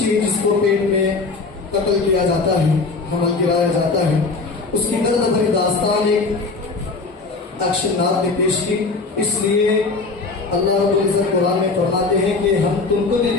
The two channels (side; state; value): right; quieter; 4.0 dB